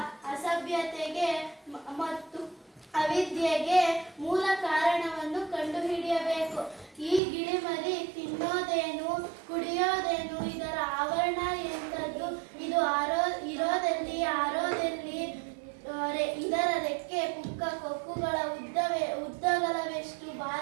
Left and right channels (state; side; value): drops out; left; at 7.2 s